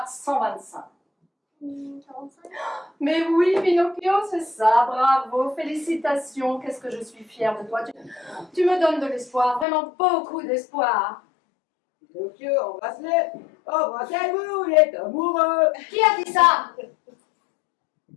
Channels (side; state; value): right; drops out; at 9.7 s